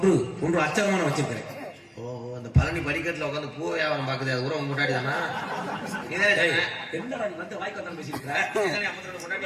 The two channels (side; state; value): both; identical; correlation 1.00